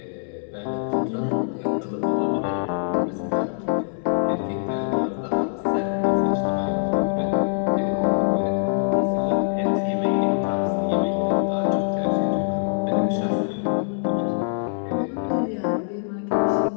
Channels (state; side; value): silent; right; 63 dB below the other